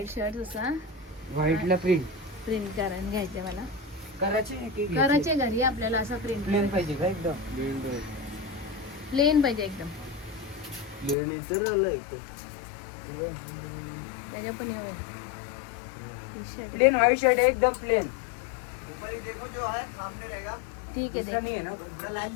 शर्ट असा व्हाईटला प्रिंट प्रिंट करून घ्यायचे मला. करायचे घरी आपल्याला असं प्रिंट प्लेन पाहिजे का एकदम? प्लेन पाहिजे एकदम. प्लेन तर आलं त्याच्या पण प्लेन व्हाईट शर्ट है एकदम प्लेन. ऊपर ही देखो जो है सामने रहेगा. ठीक है दूसरा नहीं है ना? लाइन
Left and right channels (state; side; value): drops out; right; at 11.2 s